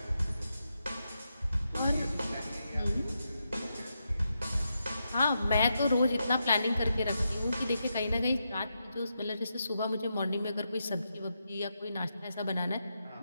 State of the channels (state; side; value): inverted; both; correlation -0.85